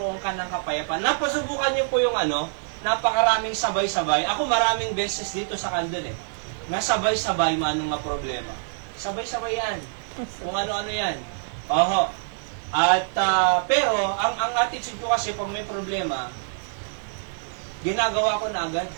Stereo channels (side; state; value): left; silent; digital silence